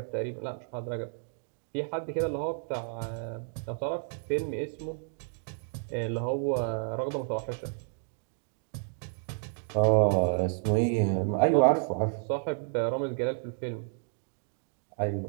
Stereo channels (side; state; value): left; silent; digital silence